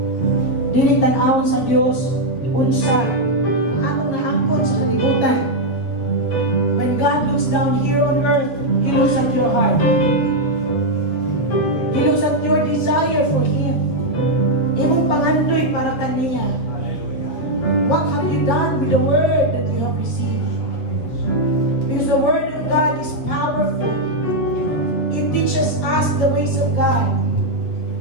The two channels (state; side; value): late; right; 8.0 ms